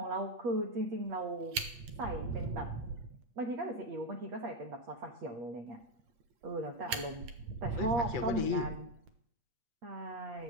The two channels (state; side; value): late; left; 8.7 ms